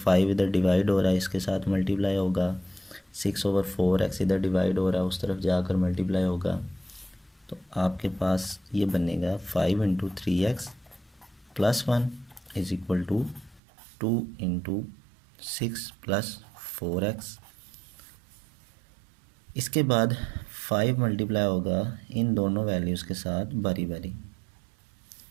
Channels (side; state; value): left; drops out; at 13.6 s